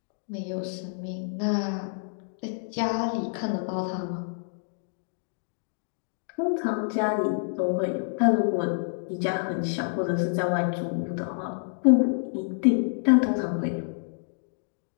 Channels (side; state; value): right; silent; digital silence